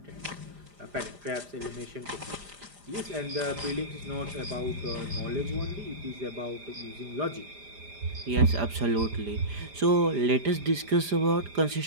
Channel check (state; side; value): late; left; 5.0 ms